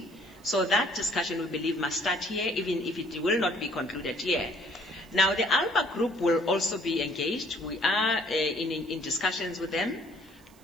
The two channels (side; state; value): right; noise; hiss, 28 dB below the sound